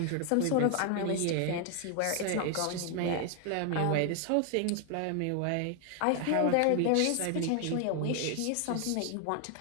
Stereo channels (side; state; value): both; different; correlation 0.00